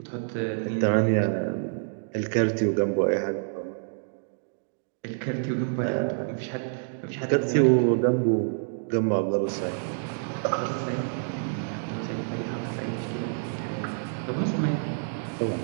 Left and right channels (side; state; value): left; silent; digital silence